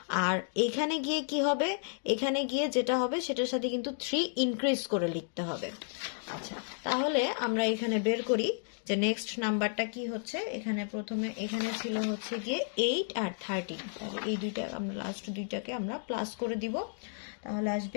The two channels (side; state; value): right; silent; digital silence